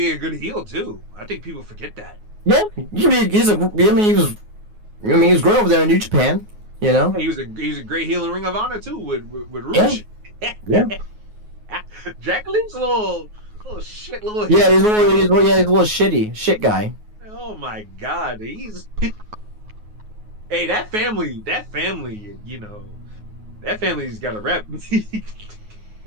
a good heel too. I think people forget that. Yeah, he was great over there in New Japan. You know, He was a great heel in Ring of Honor too with Rush. yeah. Dragon Lee's a little shit, little. Yeah, he's a little shit guy. Oh my God, Hey, that family, you know, that family's got a rep.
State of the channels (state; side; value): late; left; 9.5 ms